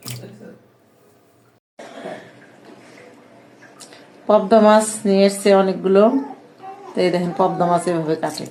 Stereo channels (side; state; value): both; identical; correlation 1.00